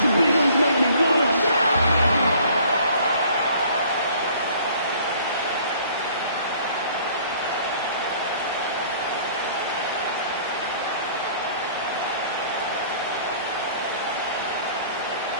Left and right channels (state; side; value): inverted; both; correlation -0.54